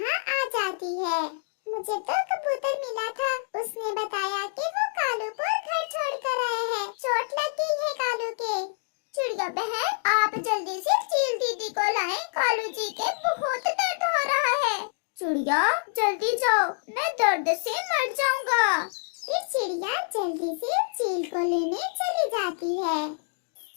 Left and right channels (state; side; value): silent; right; digital silence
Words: आ जाती है। मुझे तो कबूतर मिला था, उसने बताया कि वो कालू को घर छोड़कर आए हैं। चोट लग गई है कालू के। चिड़िया बहन, आप जल्दी से चील दीदी को लाएं। कालू जी के बहुत दर्द हो रहा है। चिड़िया, जल्दी जाओ, मैं दर्द से मर जाऊंगा। फिर चिड़िया जल्दी से चील को लेने चली जाती है